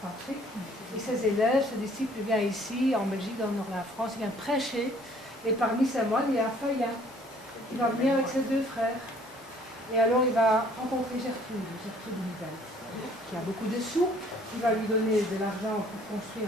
et ses élèves, ses disciples viennent ici, en Belgique, dans le nord de la France, ils viennent prêcher. Et parmi ces moines, il y a Feuillin. Il va venir avec ses deux frères. Et alors il va rencontrer Gertrude Nivelle, qui a beaucoup de sous. Il va lui donner de l'argent pour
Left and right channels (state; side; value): normal; both; correlation 0.57